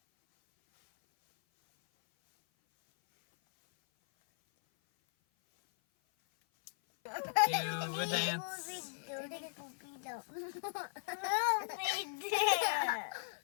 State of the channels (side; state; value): right; silent; 53 dB below the other